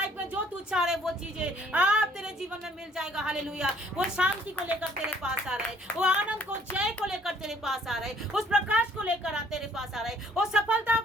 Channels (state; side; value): normal; both; correlation 0.60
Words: में जो तू चाह रहे वो चीजें आप तेरे जीवन में मिल जाएगा हालेलुया। वो शांति को लेकर तेरे पास आ रहे, वो आनंद को जय को लेकर तेरे पास आ रहे, उस प्रकाश को लेकर तेरे पास आ रहे, वो सफलता